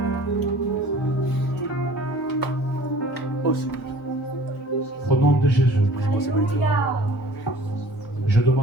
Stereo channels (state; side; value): normal; both; correlation 0.48